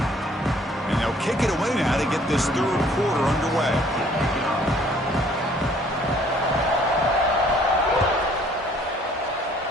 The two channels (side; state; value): both; normal; correlation 0.59